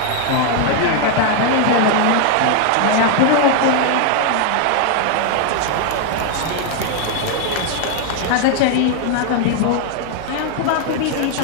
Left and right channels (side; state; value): both; different; correlation 0.00